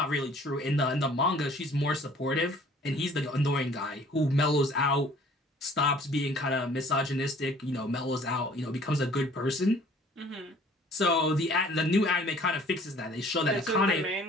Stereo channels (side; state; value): both; normal; correlation 0.54